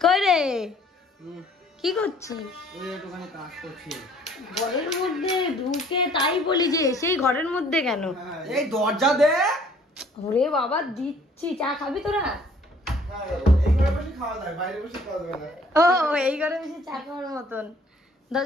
কই রে, কি করছিস? একটুখানি কাজ করছি। ঘরের মধ্যে ঢুকে তাই বলি যে সেই ঘরের মধ্যে কেন? এই দরজা দে। ওরে বাবা দিচ্ছি, চা খাবি তোরা? ও এই ঘরে বসে চা খাওয়ার মতন।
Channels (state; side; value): normal; both; correlation 0.57